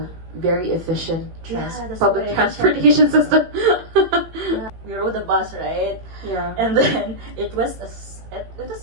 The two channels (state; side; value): late; left; 18 ms